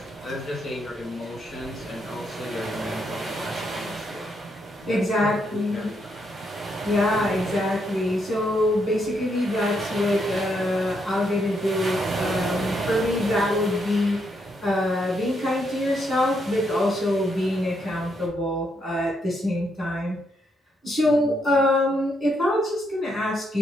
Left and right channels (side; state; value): both; normal; correlation 0.77